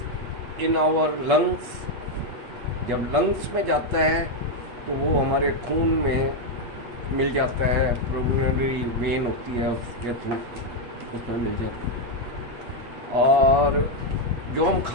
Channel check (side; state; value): left; late; 8.3 ms